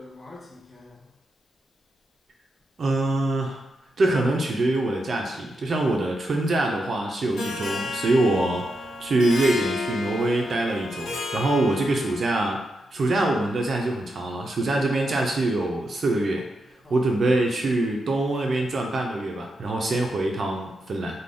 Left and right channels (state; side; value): normal; both; correlation 0.85